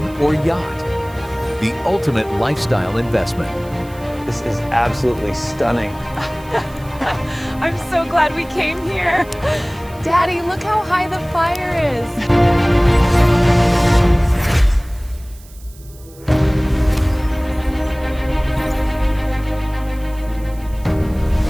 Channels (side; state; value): right; noise; hiss, 24 dB below the sound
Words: or yacht. The ultimate lifestyle investment. This is absolutely stunning. I'm so glad we came here. Daddy, look how high the fire is.